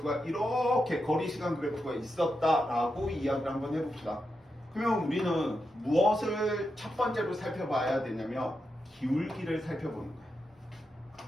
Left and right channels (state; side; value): normal; both; correlation 0.87